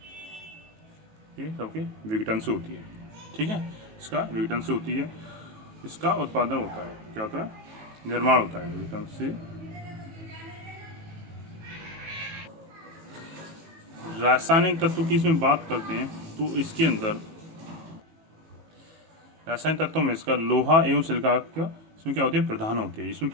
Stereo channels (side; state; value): left; late; 18 ms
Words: ये सबके विघटन से होती है। ठीक है, इसका विघटन से होती है, इसका उत्पादन होता है। क्या होता है? निर्माण होता है विघटन से। रासायनिक तत्व की इसमें बात करते हैं तो इसके अंदर रासायनिक तत्वों में इसका लोहा एवं सिलिका का इसमें क्या होती है? प्रधान होती है। इसमें